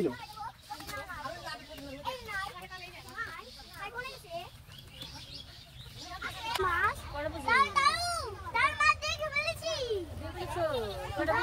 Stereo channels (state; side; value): identical; both; correlation 1.00